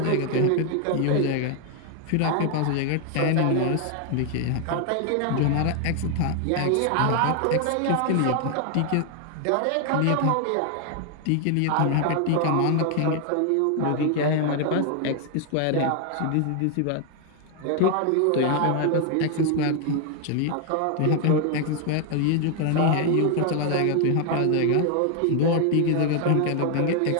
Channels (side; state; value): both; different; correlation 0.00